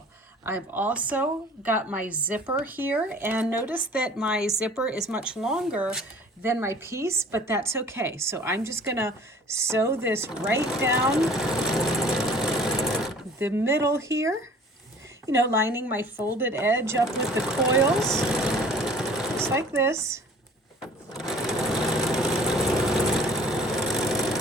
I've also got my zipper here, and notice that my zipper is much longer than my piece, but that's okay. So I'm just gonna sew this right down the middle here, you know, lining my folded edge up with the coils, just like this.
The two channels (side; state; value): both; normal; correlation 0.49